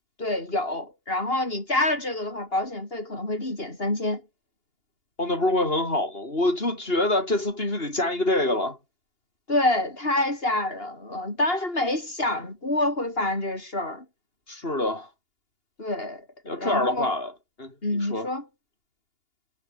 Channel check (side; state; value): right; late; 2.8 ms